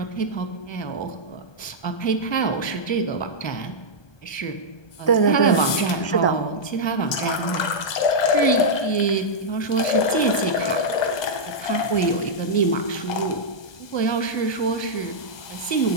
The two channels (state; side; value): late; right; 1.2 ms